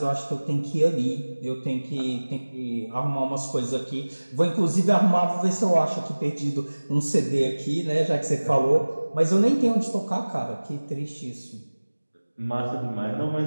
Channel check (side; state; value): both; inverted; correlation -1.00